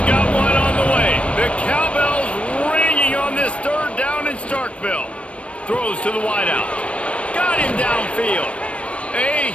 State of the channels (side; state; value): right; late; 0.062 ms